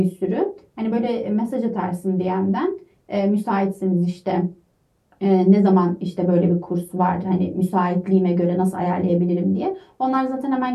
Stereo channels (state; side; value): identical; both; correlation 1.00